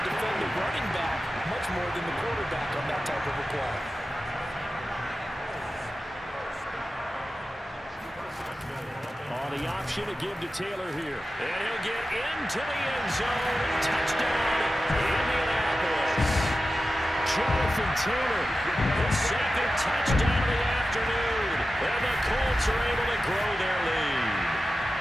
to defend the running back much more than the quarterback on that type of a play. The option to give to Taylor here. And he'll get into the end zone. Touchdown, Indianapolis. Jonathan Taylor, his 2nd touchdown of the afternoon. And the Colts are able to grow their lead.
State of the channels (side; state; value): both; normal; correlation 0.93